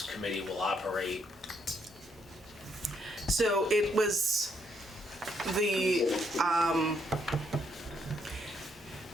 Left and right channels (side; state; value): both; normal; correlation 0.73